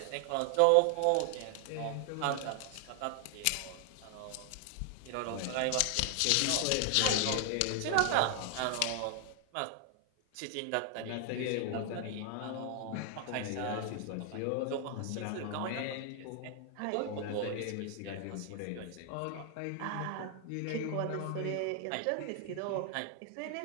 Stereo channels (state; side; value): different; both; correlation 0.00